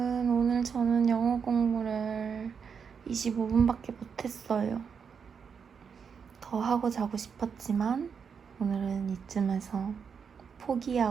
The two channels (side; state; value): left; quieter; 6.4 dB